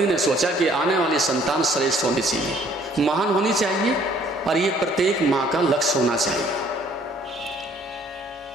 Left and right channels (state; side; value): normal; both; correlation 0.60